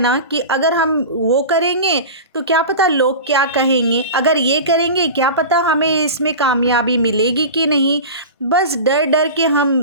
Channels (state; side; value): inverted; both; correlation -0.31